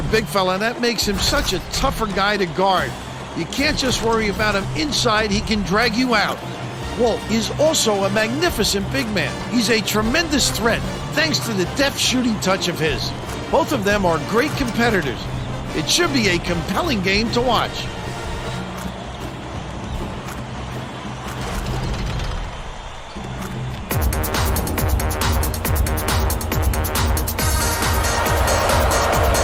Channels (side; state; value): both; identical; correlation 1.00